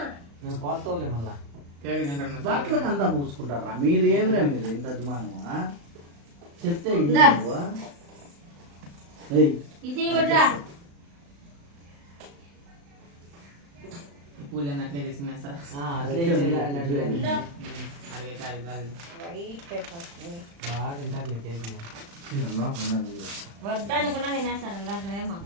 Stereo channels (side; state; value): left; late; 35 ms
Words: నువ్వు కోత్తవులే మళ్ళా. కేక్ తింటున్నా. బట్టలకు అంతా పూసుకుంటారా మీరు ఏమిరా మీరు ఇంత అభిమానమా చెప్తే ఇది దా. నువ్వు. ఏయ్, ఇది ఇవ్వట్రా. పూలు అన్నట్లే తీసుకున్నా సార్. అట్లే ఇచ్చేయాలి లడ్డు గారికి. అడిగే కాదు కాదు. బాగా తింటారులే కేక్. ఇదమ్మా ఉన్నది ఇది. వద్దనుకున్నా తినేస్తారు అలాంటివేమో.